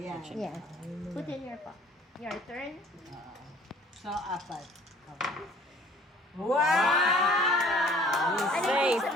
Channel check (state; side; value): normal; both; correlation 0.53